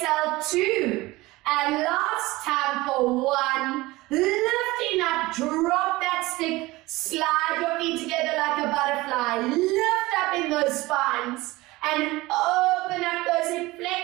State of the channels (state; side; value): quieter; left; 20.1 dB